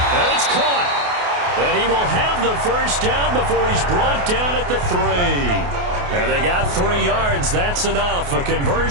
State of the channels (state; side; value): late; left; 28 ms